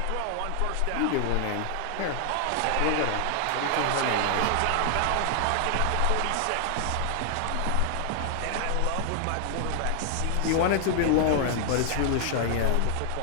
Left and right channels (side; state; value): both; different; correlation 0.00